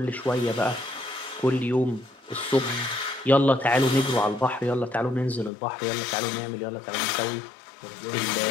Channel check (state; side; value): drops out; right; at 5.5 s